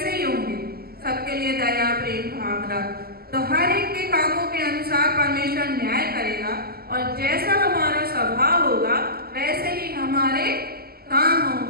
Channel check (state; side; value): late; left; 0.45 ms